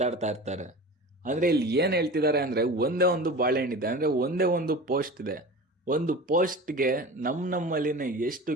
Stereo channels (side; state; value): both; normal; correlation 0.34